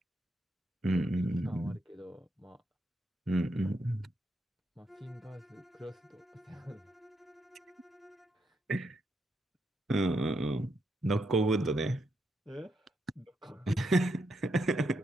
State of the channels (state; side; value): normal; both; correlation 0.80